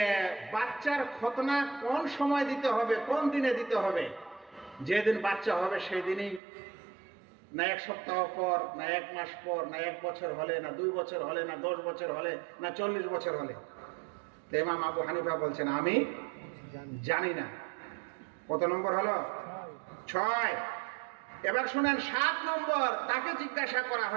বাচ্চার খতনা কোন সময় দিতে হবে, কোন দিনে দিতে হবে? যেদিন বাচ্চা হবে সেই দিনই, না 1 সপ্তাহ পর, না 1 মাস পর, না 1 বছর হলে, না 2 বছর হলে, না 10 বছর হলে, না 40 বছর হলে? তো ইমাম আবু হানিফা বলছেন আমি জানি না। কত নম্বর হলো? 6। এবার শুনেন 7 নম্বর, তাকে জিজ্ঞাসা করা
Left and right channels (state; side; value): drops out; left; at 6.4 s